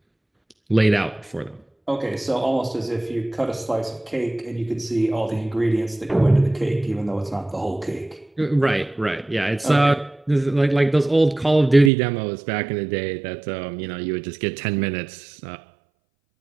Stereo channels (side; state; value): left; drops out; at 11.9 s